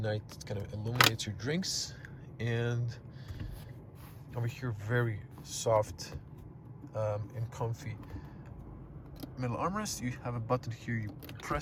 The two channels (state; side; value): identical; both; correlation 1.00